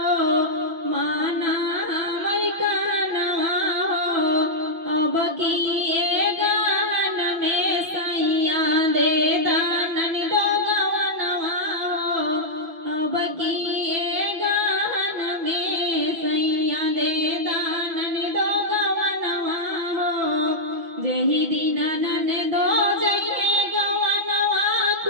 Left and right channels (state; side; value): late; left; 6.0 ms